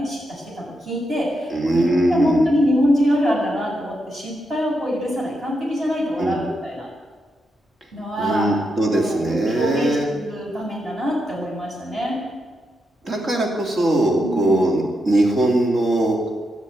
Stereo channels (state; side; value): normal; both; correlation 0.84